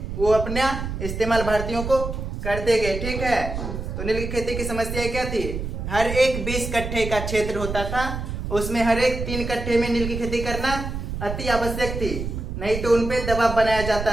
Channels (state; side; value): noise; right; rumble, 5 dB below the sound